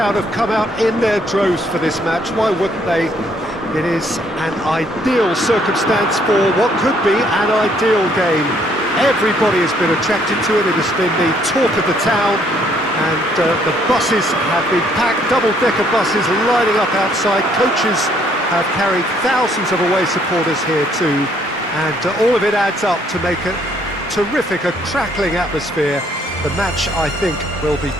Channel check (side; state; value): both; normal; correlation 0.66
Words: have come out in their droves for this match. Why wouldn't they? It is an ideal circumstance for what could be an ideal game. Everybody has been attracted to it. It has been the talk of the town and the buses have been packed, double-decker buses lining up outside. Coaches have carried thousands of away supporters here too, and all of it adds up to make a terrific, a crackling atmosphere. The match, I think, will be